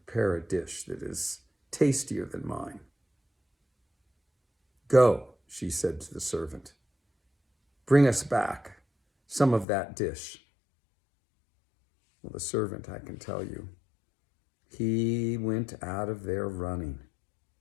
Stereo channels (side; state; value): right; drops out; at 9.7 s